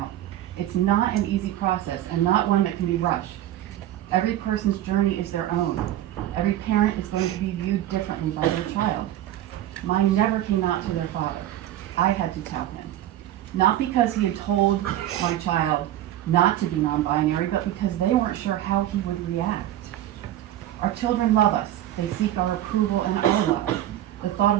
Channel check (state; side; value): quieter; left; 12.9 dB